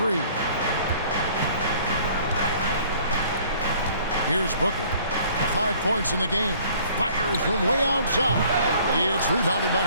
Here's Booker. 5 points in the game. Fires from way outside. It's rebounded by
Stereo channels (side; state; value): both; inverted; correlation -0.55